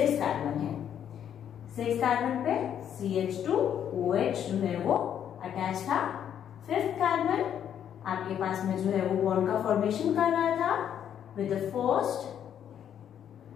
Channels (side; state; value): right; quieter; 9.4 dB